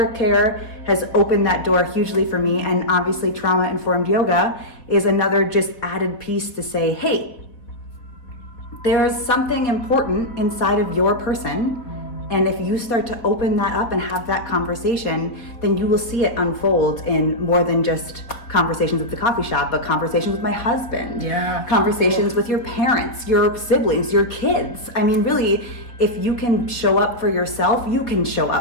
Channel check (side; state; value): right; late; 4.1 ms